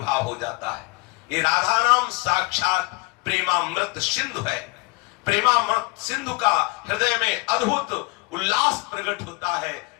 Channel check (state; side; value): quieter; right; 25.3 dB